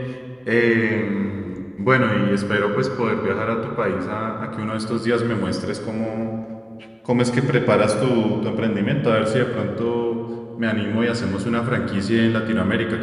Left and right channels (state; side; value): identical; both; correlation 1.00